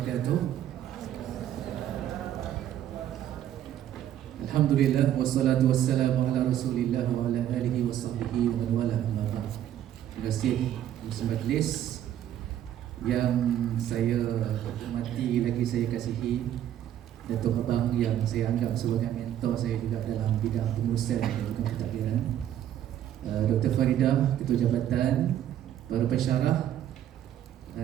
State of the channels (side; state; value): left; quieter; 11.2 dB